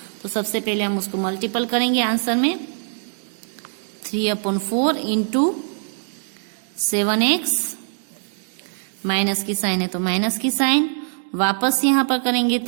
तो सबसे पहले हम उसको मल्टीपल करेंगे आंसर में। 3/4 इंटू 7x, माइनस की साइन है तो माइनस की साइन, वापस यहाँ पर करेंगे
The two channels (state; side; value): silent; left; digital silence